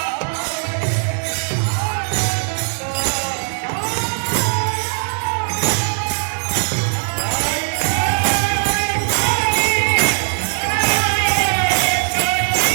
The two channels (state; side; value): silent; left; digital silence